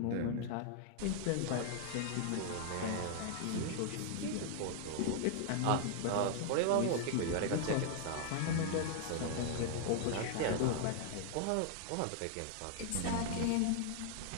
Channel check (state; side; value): different; both; correlation 0.00